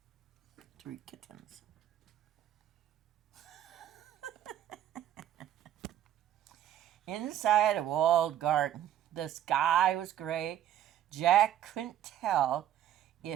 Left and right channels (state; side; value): quieter; left; 11.4 dB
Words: 3 kittens. Inside a walled garden, the sky was gray. Jack couldn't tell